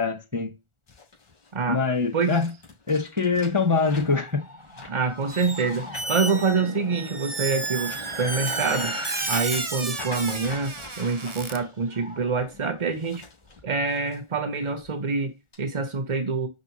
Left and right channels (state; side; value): late; left; 1.7 ms